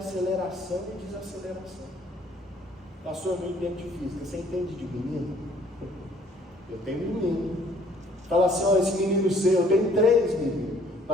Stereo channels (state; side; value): normal; both; correlation 0.59